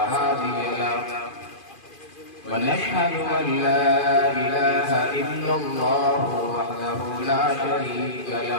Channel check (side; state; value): right; late; 2.4 ms